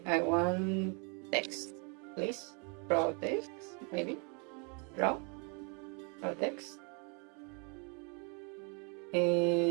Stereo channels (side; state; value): left; quieter; 35.6 dB